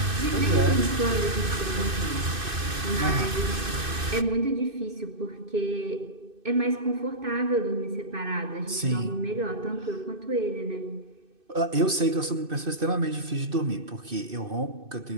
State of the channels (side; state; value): left; late; 2.6 ms